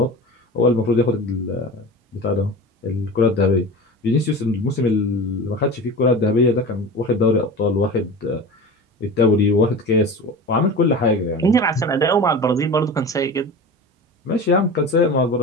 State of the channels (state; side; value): normal; both; correlation 0.32